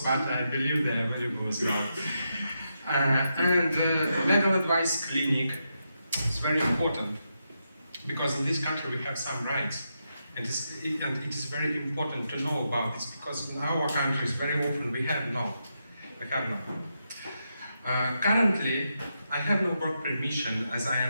but I believe their value goes well. Legal advice clinic is very important because in this country we have some rights, and it is very important to know about this because in our countries very often we have none. Currently, I have no work permission as I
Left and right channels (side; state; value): both; inverted; correlation -0.84